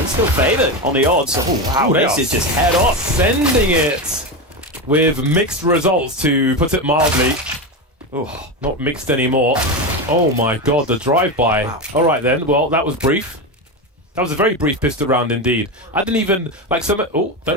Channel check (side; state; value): both; normal; correlation 0.16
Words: still favoured on the odds. Oh wow, this is just head off. Sending it with mixed results, to put it mildly. Oh, not mixed anymore. Oh my god, the drive-by. Wow. Alright then, well that was brief. That was a very brief pistol round indeed. I didn't even, like some, oh,